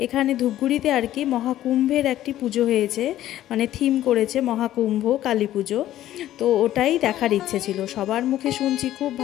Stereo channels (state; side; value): quieter; right; 13.2 dB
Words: এখানে ধূপগুড়িতে আর কি মহাকুম্ভের একটি পুজো হয়েছে, মানে থিম করেছে মহাকুম্ভ কালী পুজো। তো ওটাই দেখার ইচ্ছে ছিল, সবার মুখে শুনছি খুব